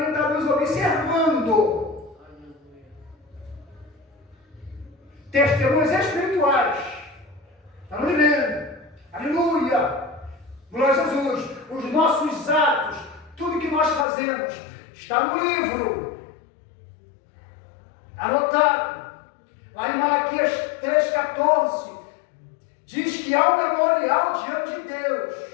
estão nos observando. Testemunhas espirituais. Estamos vendo. A Aleluia! Glória a Jesus! Os nossos atos, tudo que nós fazemos, está no livro, anotado. Lá em Malaquias 3,14, diz que há um memorial diante de Deus.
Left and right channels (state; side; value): drops out; right; at 14.1 s